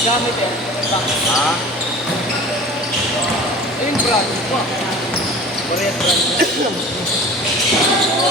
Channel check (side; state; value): both; normal; correlation 0.41